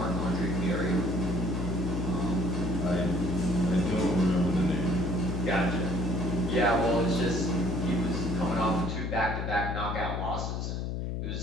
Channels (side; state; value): left; noise; hum, 2 dB below the sound